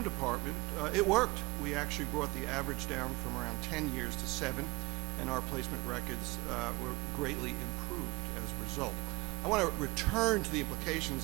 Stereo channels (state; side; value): quieter; left; 24.3 dB